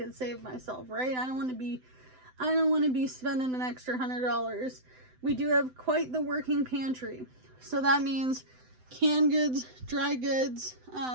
save myself, right? I don't want to be spending an extra $100. We do have quite the working pantry. So that means canned goods, dry goods,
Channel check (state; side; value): late; left; 7.9 ms